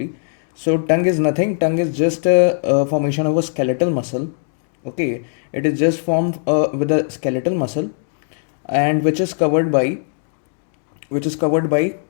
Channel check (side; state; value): right; silent; digital silence